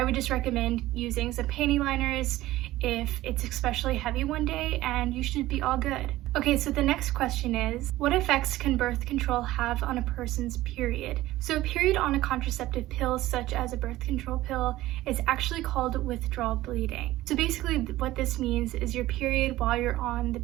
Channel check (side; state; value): left; quieter; 16.3 dB